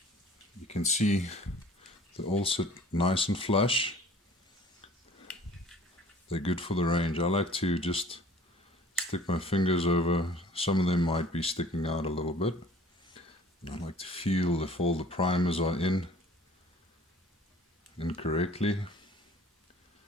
you can see they all sit nice and flush. They're good for the range. I like to just stick my fingers over. Some of them might be sticking out a little bit. And I like to feel if all the primers are in correctly.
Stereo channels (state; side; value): normal; both; correlation 0.50